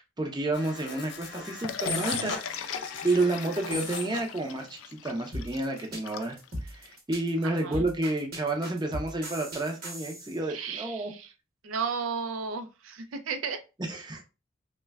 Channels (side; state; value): both; normal; correlation 0.53